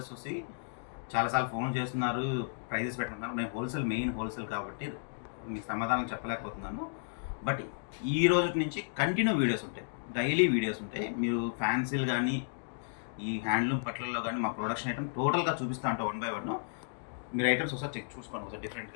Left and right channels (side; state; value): right; silent; digital silence